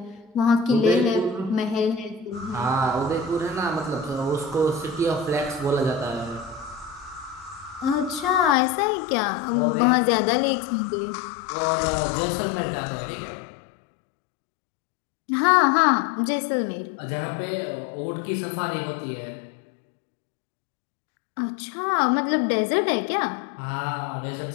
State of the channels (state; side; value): drops out; right; at 8.6 s